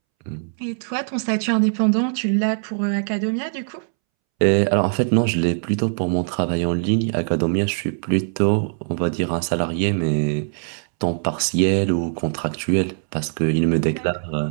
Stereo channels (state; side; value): silent; left; 64 dB below the other